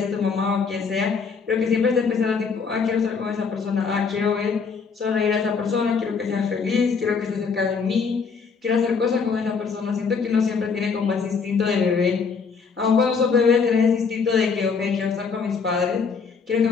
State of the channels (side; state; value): right; quieter; 5.5 dB